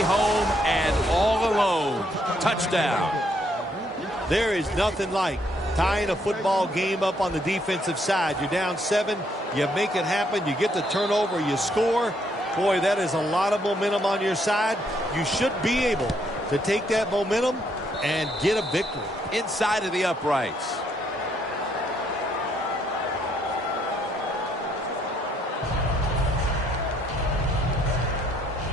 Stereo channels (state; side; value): normal; both; correlation 0.71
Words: home and all alone. Touchdown. There is nothing like tying a football game up on the defensive side. You're down 7. You make it happen. You get the turnover. You score. Boy, that is a lot of momentum on your side. You should be able to take that momentum and get a victory. Inside of the uprights.